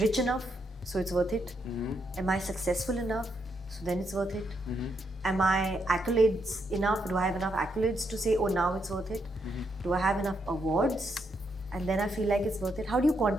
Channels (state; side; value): normal; both; correlation 0.78